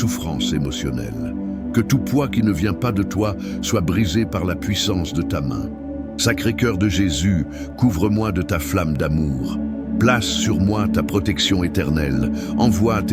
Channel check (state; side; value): identical; both; correlation 1.00